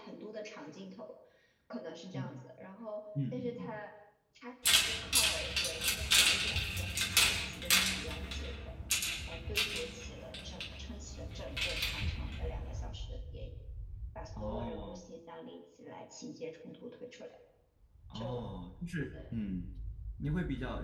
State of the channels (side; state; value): both; identical; correlation 1.00